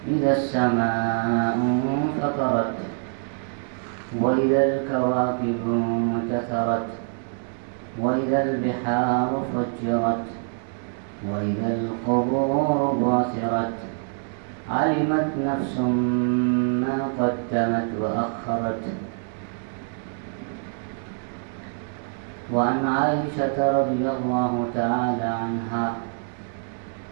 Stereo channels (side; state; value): left; silent; 62 dB below the other